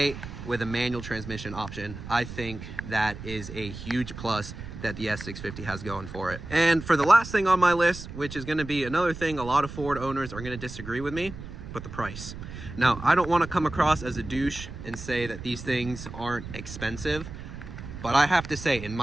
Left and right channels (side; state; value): right; noise; rumble, 11 dB below the sound